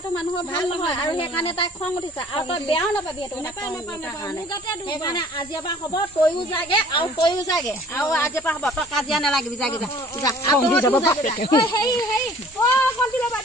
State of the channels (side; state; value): both; normal; correlation 0.51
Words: মানুহৰ ভাল নহয় আৰু সেইকাৰণে তাই খং উঠিছে আৰু তই বেয়াও নাপাবি সেইকাৰণে আজিৰ পৰা হ'ব তইও যাগে আৰু আজিৰ পৰা হ'ব তই কাজিয়া নালাগিবি যাগে